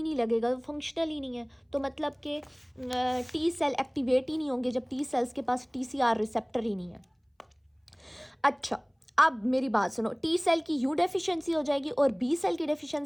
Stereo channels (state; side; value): identical; both; correlation 1.00